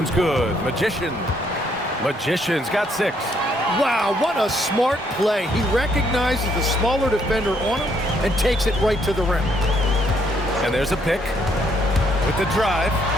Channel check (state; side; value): normal; both; correlation 0.70